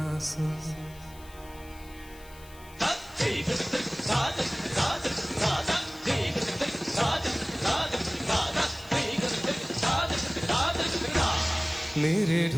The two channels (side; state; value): left; noise; hiss, 22 dB below the sound